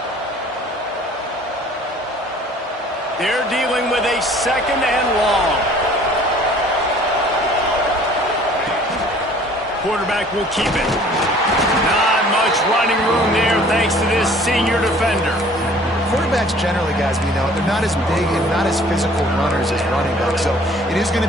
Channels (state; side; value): normal; both; correlation 0.53